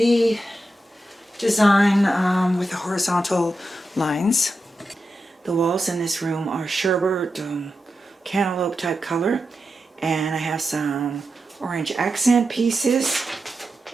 design with the horizontal lines. The walls in this room are sherbet cantaloupe type color, and I have some orange accent pieces,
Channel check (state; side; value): normal; both; correlation 0.89